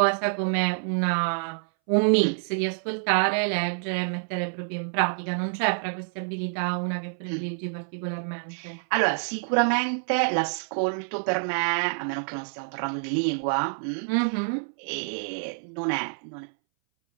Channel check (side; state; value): left; silent; 60 dB below the other